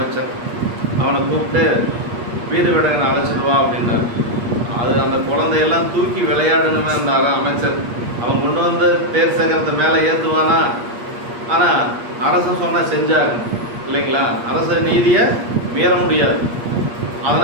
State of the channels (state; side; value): late; left; 8.4 ms